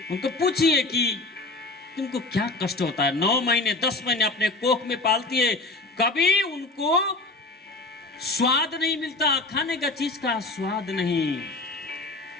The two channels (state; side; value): quieter; right; 3.0 dB